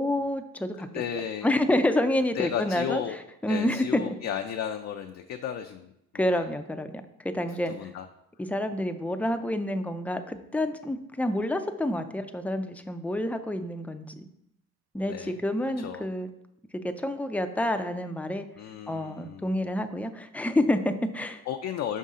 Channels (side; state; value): both; normal; correlation 0.76